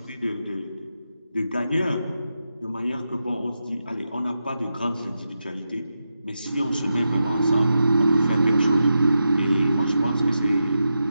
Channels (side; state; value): both; inverted; correlation -0.88